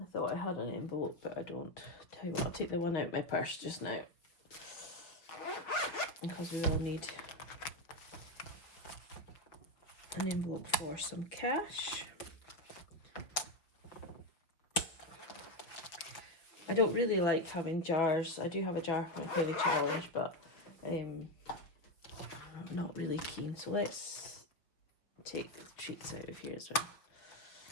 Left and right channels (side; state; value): right; late; 5.9 ms